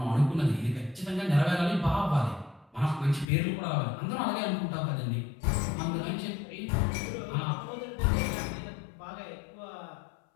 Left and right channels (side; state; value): right; drops out; at 3.2 s